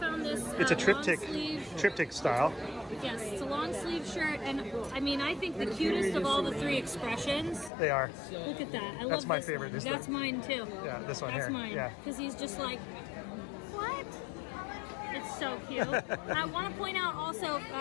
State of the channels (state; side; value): drops out; right; at 7.7 s